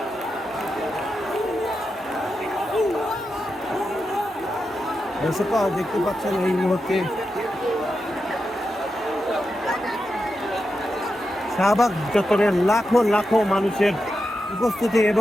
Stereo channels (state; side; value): normal; both; correlation 0.88